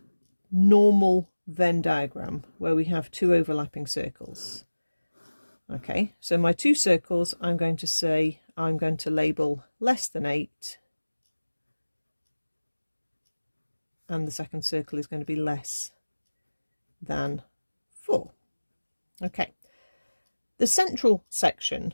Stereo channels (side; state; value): both; inverted; correlation -1.00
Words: normal Venn diagram where we have two overlapping circles. Okay, so my two circles, I'm going to label less than 8, and the second circle is going to be less than 4. Okay, the central